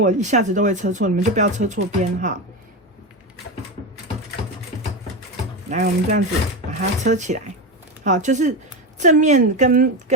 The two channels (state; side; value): normal; both; correlation 0.17